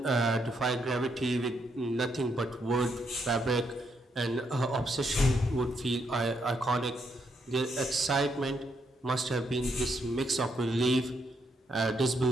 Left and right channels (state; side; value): normal; both; correlation 0.77